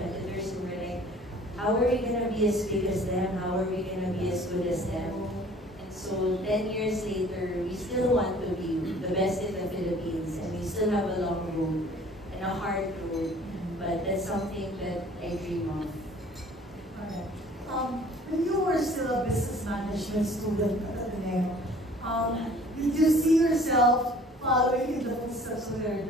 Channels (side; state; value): both; normal; correlation 0.51